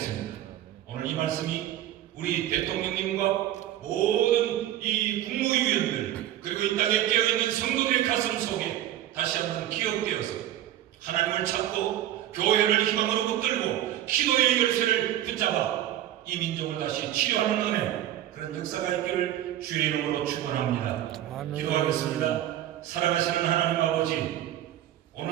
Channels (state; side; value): quieter; left; 12.6 dB